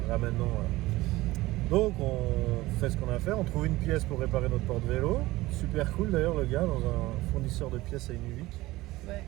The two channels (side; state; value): left; quieter; 18.7 dB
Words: là maintenant. Donc on fait ce qu'on a à faire, on trouve une pièce pour réparer notre porte-vélo. Super cool d'ailleurs le gars, dans un fournisseur de pièces à Inuvik. Ouais.